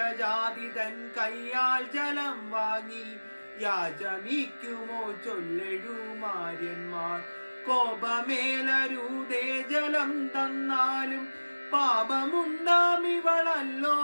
തൻ കയ്യാൽ ജലം വാങ്ങി യാചമിക്കുമോ ചൊല്ലെഴുമാര്യന്മാർ കോപമേലരൂതേ ജലം തന്നാലും പാപമുണ്ടാം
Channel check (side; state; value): both; inverted; correlation -1.00